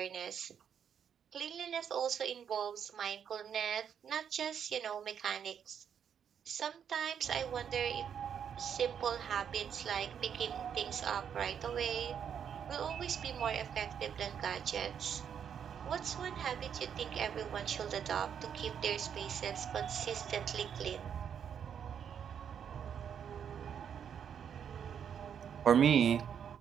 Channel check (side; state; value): left; quieter; 8.1 dB